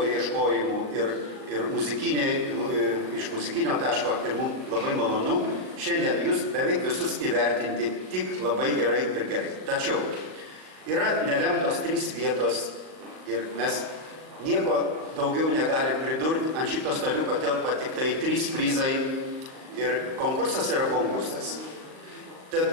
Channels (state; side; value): late; left; 38 ms